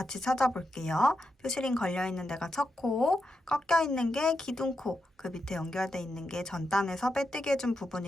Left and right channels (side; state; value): both; normal; correlation 0.86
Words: 찾아볼게요. 표시링 걸려있는 데가 첫 코, 꺾여있는 게 기둥코, 그 밑에 연결돼 있는 게 전단에서 빼뜨기 해준